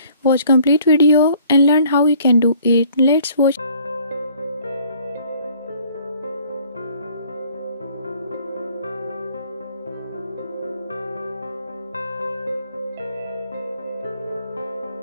Watch complete video and learn how you can do it. Let's watch.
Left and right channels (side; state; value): both; inverted; correlation -0.57